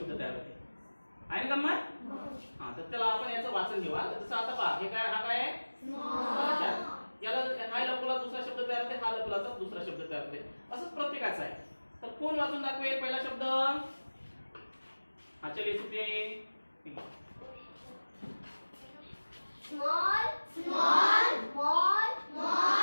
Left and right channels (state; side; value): inverted; both; correlation -1.00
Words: तयार होते. आहे ना गंमत? हा, तर त्याला आपण याचं वाचन घेऊ. जसं आता पहा, हे काय, हा काय आहे? याला हा लपवला दुसरा शब्द तयार होते, हा लपवला तर दुसरा शब्द तयार होते. असंच प्रत्येकाचं आहे. तर कोण वाचून दाखवेल पहिला शब्द? हा, चलिए Supriya. Small small small